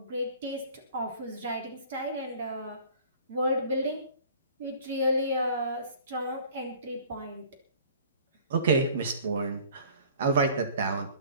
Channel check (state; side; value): inverted; both; correlation -0.49